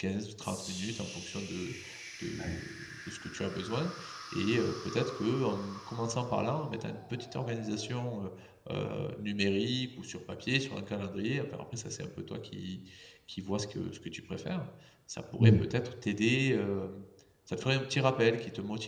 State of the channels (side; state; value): both; identical; correlation 1.00